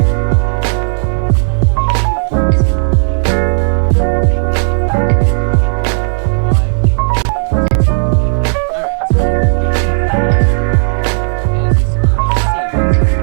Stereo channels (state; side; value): silent; left; digital silence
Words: Line up, bumblefucks! Why would you hurt this card? Alright, so anyway, Blaster Blade. As his skill says,